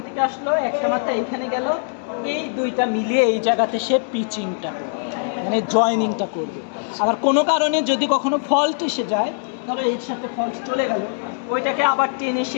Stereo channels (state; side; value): silent; right; digital silence